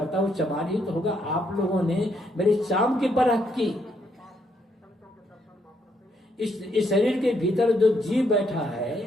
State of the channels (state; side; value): normal; both; correlation 0.74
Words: वो चमार ही तो होगा। आप लोगों ने मेरी चाम की परख की। इस शरीर के भीतर जो जीव बैठा है